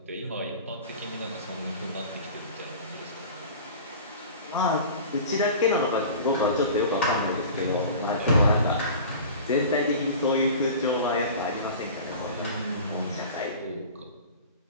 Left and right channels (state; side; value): inverted; both; correlation -0.38